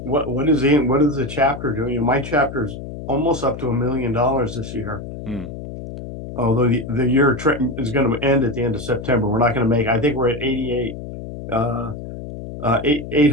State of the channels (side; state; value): left; noise; hum, 10 dB below the sound